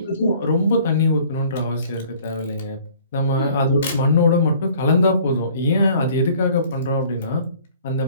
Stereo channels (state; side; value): inverted; both; correlation -0.54